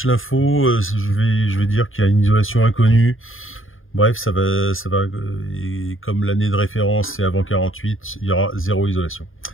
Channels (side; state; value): right; late; 0.59 ms